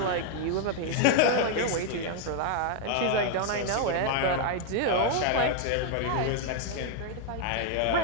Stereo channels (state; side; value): different; both; correlation 0.00